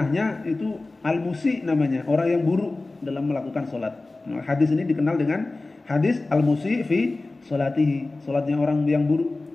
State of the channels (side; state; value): right; quieter; 3.2 dB